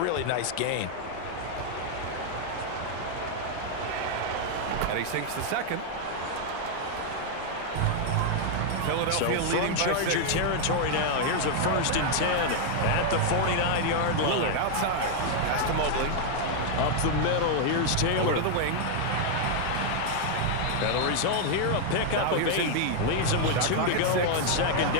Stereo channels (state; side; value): different; both; correlation 0.00